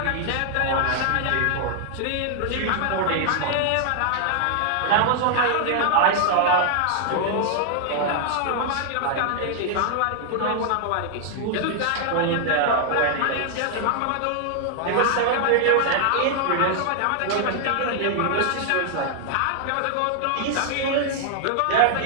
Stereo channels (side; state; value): both; different; correlation 0.00